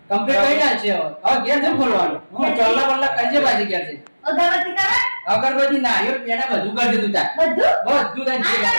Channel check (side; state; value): both; inverted; correlation -1.00